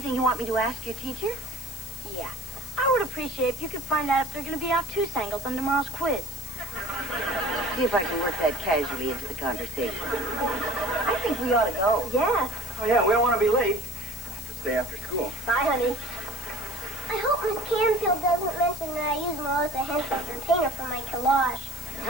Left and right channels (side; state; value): left; noise; hiss, 13 dB below the sound